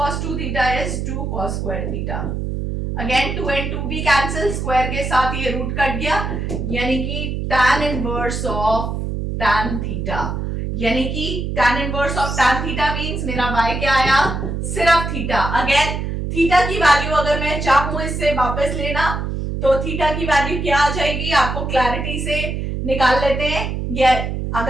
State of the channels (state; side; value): noise; right; hum, 3 dB below the sound